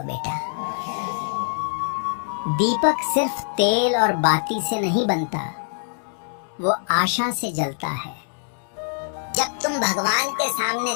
बेटा। दीपक सिर्फ तेल और बाती से नहीं बनता, वो आशा से जलता है। जब तुम भगवान के सामने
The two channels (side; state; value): right; silent; 63 dB below the other